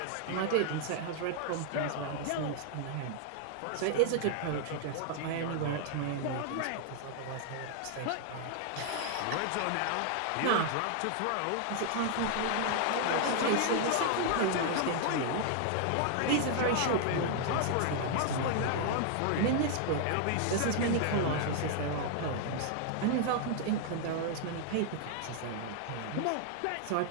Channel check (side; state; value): both; different; correlation 0.00